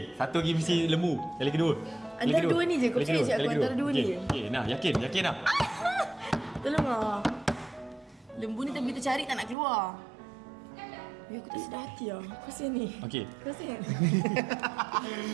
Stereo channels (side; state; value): left; drops out; at 9.6 s